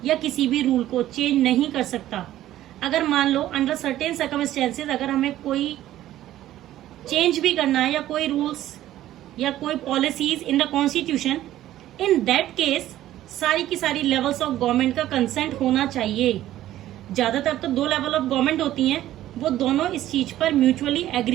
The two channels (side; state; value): left; quieter; 13.6 dB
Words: या किसी भी रूल को चेंज नहीं कर सकता। अगर मान लो अंडर सर्टेन सर्कमस्टेंसेज अगर हमें कोई चेंज भी करना है, या कोई रूल्स या कोई policies in the constitution, in that case सारी की सारी लेवल्स ऑफ गवर्नमेंट का कंसेंट होना चाहिए। ज्यादातर तो 2 लेवल ऑफ गवर्नमेंट होती हैं, वो दोनों इस चीज पर म्यूचुअली